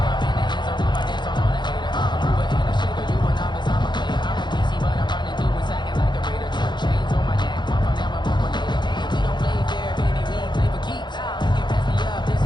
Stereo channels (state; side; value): late; right; 0.21 ms